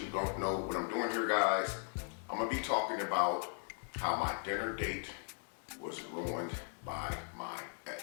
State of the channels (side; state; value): right; silent; 52 dB below the other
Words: let you know what I'm doing here, guys. I'm going to be talking about how my dinner date was ruined by my